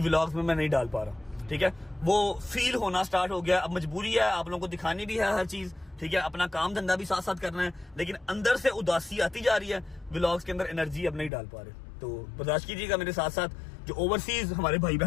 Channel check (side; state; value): right; drops out; at 11.3 s